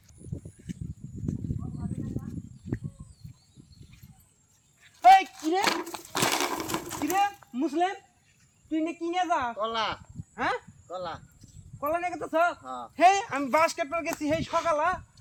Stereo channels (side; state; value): both; identical; correlation 1.00